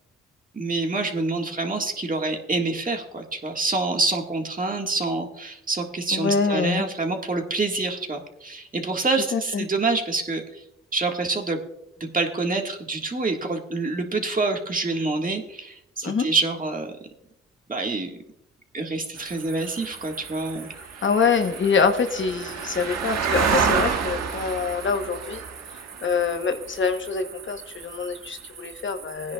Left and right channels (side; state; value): both; normal; correlation 0.31